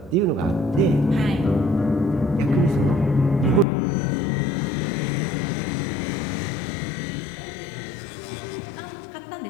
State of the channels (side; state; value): right; drops out; at 3.7 s